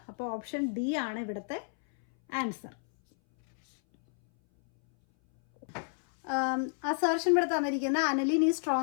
അപ്പോൾ ഓപ്ഷൻ ഡി ആണ് ഇവിടുത്തെ ആൻസർ. അസർഷൻ ഇവിടെ തന്നിരിക്കുന്ന aniline is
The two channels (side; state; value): right; silent; 58 dB below the other